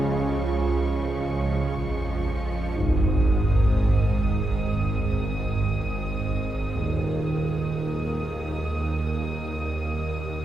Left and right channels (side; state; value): both; normal; correlation 0.86